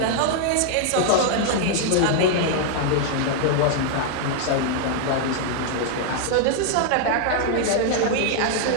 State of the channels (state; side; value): different; both; correlation 0.00